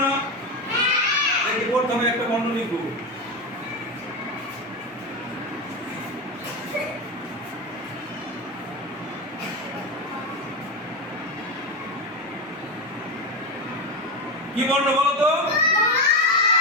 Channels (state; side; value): normal; both; correlation 0.15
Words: না? দেখি প্রথমে একটা বর্ণ লিখবো। কি বর্ণ বলো তো?